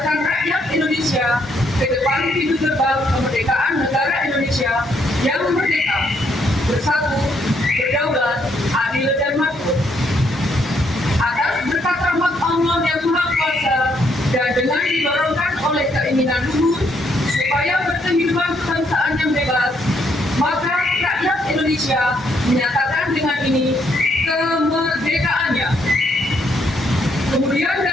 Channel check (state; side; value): normal; both; correlation 0.72